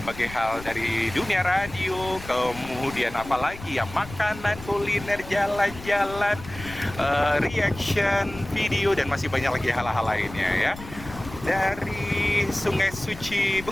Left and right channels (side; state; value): left; noise; rumble, 14 dB below the sound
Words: hal dari dunia radio, kemudian apalagi ya, makanan, kuliner, jalan-jalan, reaction, video, dan masih banyak lagi hal-hal lainnya ya. Dari Sungai Suci